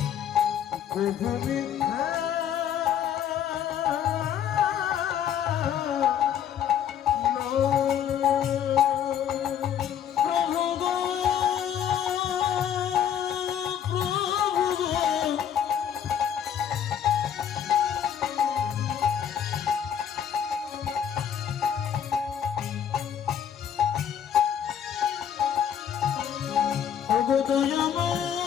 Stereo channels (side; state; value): right; quieter; 9.1 dB